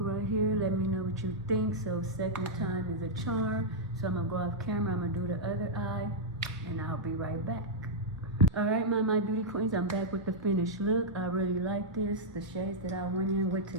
here. Let me know what you think. So second time is a charm. So I'm going to go off camera. I'm going to do the other eye. And I'll be right back. Alright, my beauty queens. I'm back with the finished look. I really like this. The shades that I went in with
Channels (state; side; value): normal; both; correlation -0.06